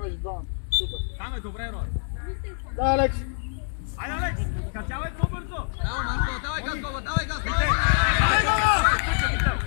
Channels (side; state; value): right; silent; digital silence